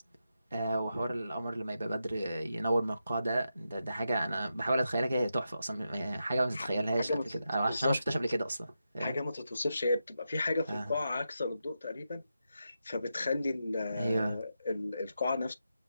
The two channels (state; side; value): inverted; both; correlation -0.87